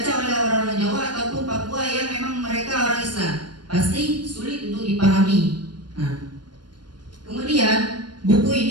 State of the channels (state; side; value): late; left; 0.71 ms